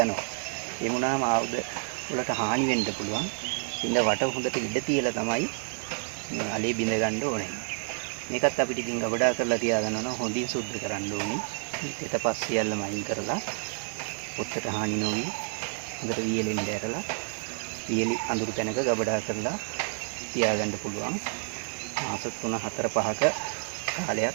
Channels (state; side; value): silent; left; 59 dB below the other